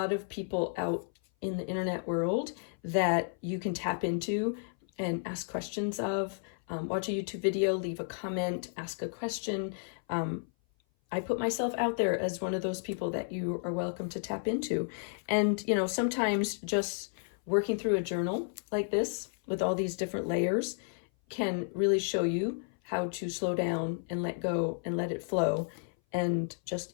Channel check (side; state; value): right; silent; 56 dB below the other